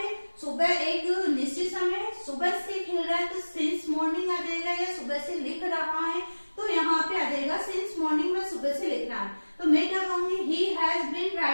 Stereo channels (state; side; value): inverted; both; correlation -1.00